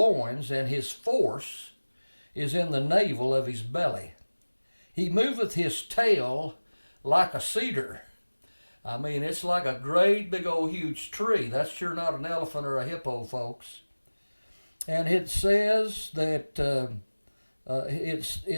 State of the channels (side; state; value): both; inverted; correlation -1.00